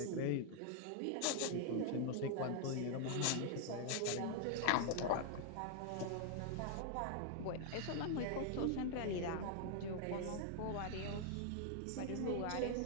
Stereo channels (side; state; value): both; different; correlation 0.00